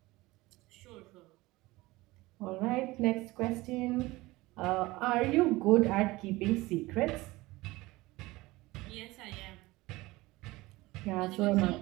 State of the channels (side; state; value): left; quieter; 20.2 dB